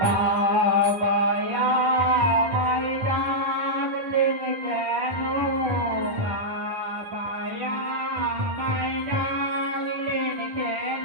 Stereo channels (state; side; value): late; left; 10 ms